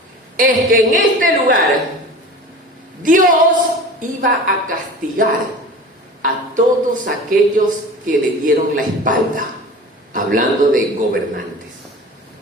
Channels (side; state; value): both; normal; correlation 0.37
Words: Es que en este lugar Dios iba a castigar a todos aquellos que le dieron la espalda, hablando de gobernantes,